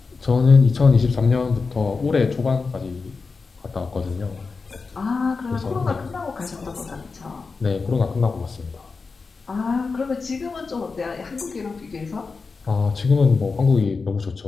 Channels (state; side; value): quieter; right; 4.5 dB